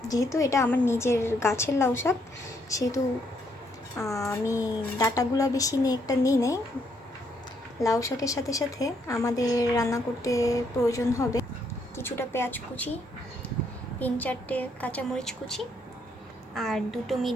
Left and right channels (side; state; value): both; normal; correlation 0.72